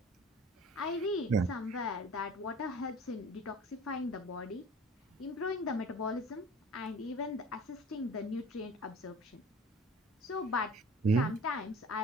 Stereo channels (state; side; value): normal; both; correlation 0.44